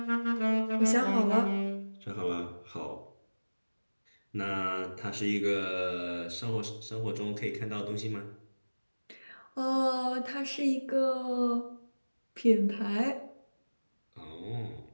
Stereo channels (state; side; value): inverted; both; correlation -1.00